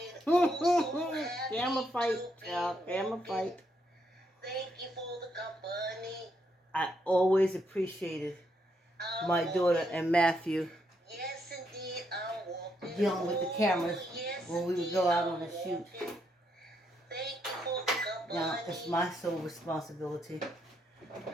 Camera fight, y'all. Camera fight. I always appreciated my daughter and Matthew dealing with the cameras when we would go out on a shoot. Now, it's my sole responsibility.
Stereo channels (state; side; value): normal; both; correlation 0.77